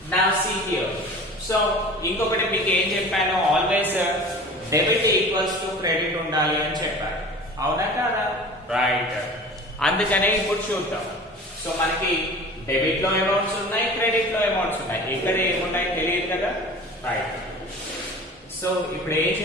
Now see here. So ఇంకొకటి మీకు ఏం చెప్పాను, always debit equals to credit ఉండాలి అని చెప్పాను, అవునా కాదా. రైట్, అందుకనే ఇప్పుడు చూద్దాం. సో మనకి డెబిట్ లో అమౌంట్స్ ఉన్నాయి, క్రెడిట్ లో అమౌంట్స్ ఉన్నాయి. ఇక్కడ ఏమున్నాయి తెలియదు కదా. రైట్, సో ఇప్పుడు ఏం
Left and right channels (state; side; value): normal; both; correlation 0.39